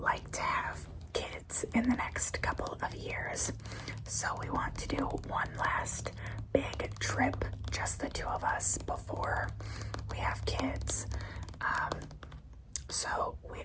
like to have kids in the next couple of years. So we want to do one last big trip, just the two of us, before we have kids. So we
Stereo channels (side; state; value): both; identical; correlation 1.00